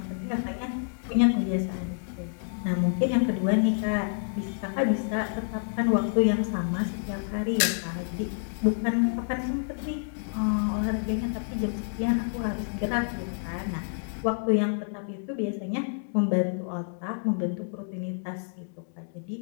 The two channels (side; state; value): right; silent; digital silence